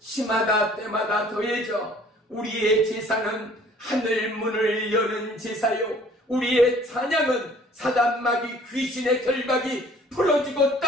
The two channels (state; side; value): normal; both; correlation 0.54